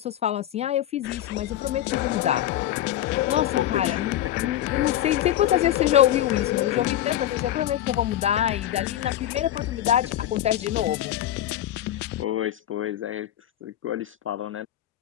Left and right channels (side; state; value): right; quieter; 12.4 dB